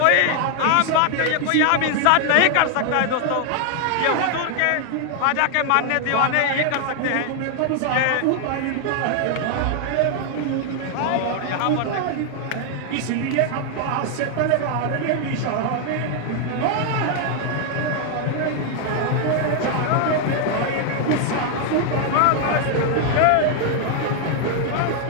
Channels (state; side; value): different; both; correlation 0.00